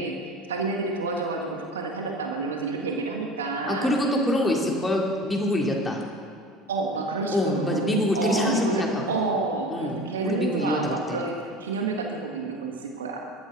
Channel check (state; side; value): normal; both; correlation 0.36